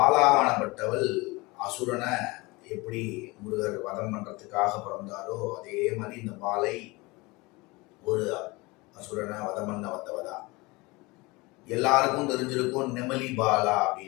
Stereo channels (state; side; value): quieter; right; 23.9 dB